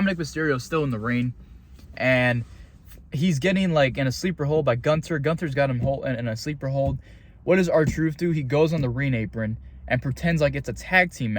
Mysterio is still in the ring. And he's getting like in a sleeper hold by Gunther. Gunther's got him in a sleeper hold. What does R-Truth do? He goes on the ring apron and pretends like it's a tag team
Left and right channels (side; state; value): both; identical; correlation 1.00